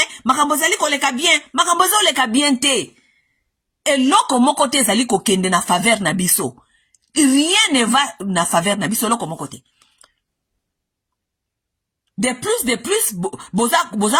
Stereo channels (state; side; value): identical; both; correlation 1.00